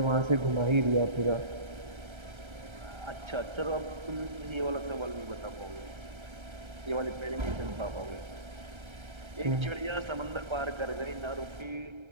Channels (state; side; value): late; left; 1.3 ms